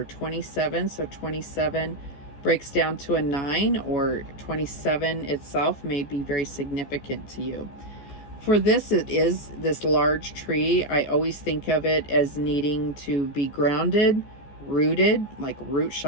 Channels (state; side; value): late; right; 14 ms